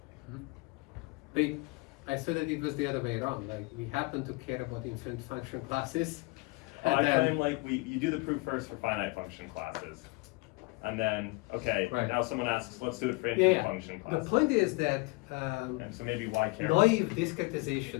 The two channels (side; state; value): right; quieter; 25.6 dB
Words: I said that it was the other way around, like we happen to care about infinite function classes Oh, I And then- claim like you do the proof first for finite function classes. And then, okay, Right. now someone asks, let's do it for Yeah, infinite yeah. function The classes. point is that And so maybe why care? naive